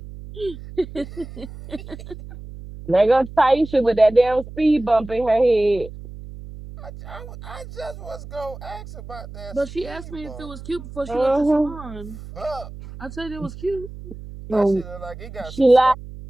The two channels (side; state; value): right; noise; hum, 14 dB below the sound